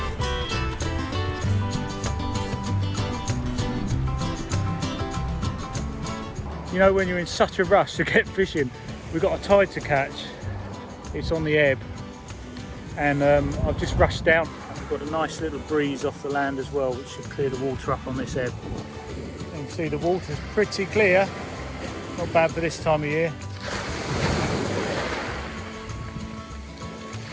You know, when you're in such a rush to get fishing, we've got a tide to catch. It's on the ebb, and I've just rushed down. We've got a nice little breeze off the land as well, which should clear the water up on this ebb. You can see the water's pretty clear. Not bad for this time of year.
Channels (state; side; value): identical; both; correlation 1.00